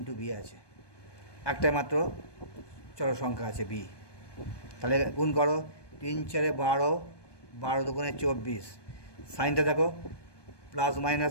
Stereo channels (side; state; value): right; late; 1.2 ms